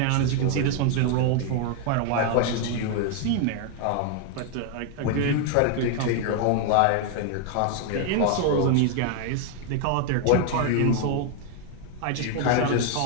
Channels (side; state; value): both; different; correlation 0.00